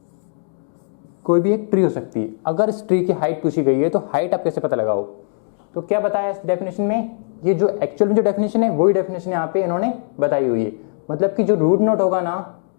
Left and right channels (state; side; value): silent; right; 66 dB below the other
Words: कोई भी एक ट्री हो सकती है। अगर इस ट्री की हाइट पूछी गई है तो हाइट आप कैसे पता लगाओ। तो क्या बताया इस डेफिनेशन में, ये जो एक्चुअल में जो डेफिनेशन है वही डेफिनेशन यहाँ पे इन्होंने बताई हुई है। मतलब कि जो रूट नोड होगा ना,